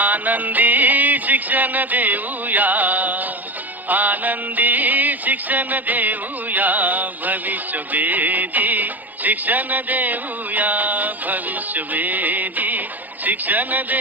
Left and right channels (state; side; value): late; left; 0.083 ms